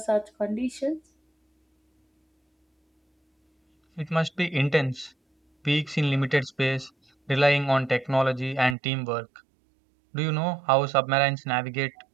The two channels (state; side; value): drops out; left; at 8.8 s